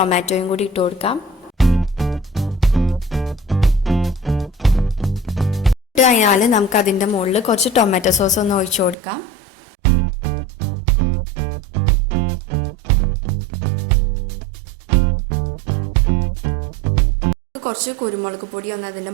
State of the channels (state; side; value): drops out; left; at 9.0 s